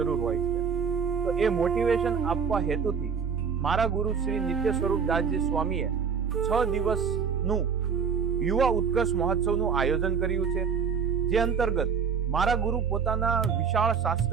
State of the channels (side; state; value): left; quieter; 6.5 dB